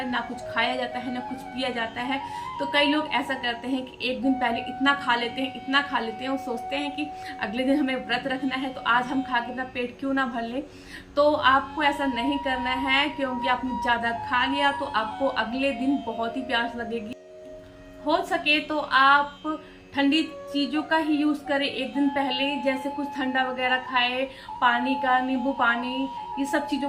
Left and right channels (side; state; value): both; identical; correlation 1.00